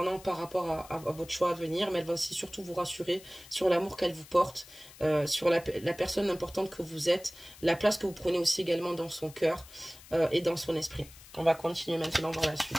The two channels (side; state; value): left; noise; hiss, 20 dB below the sound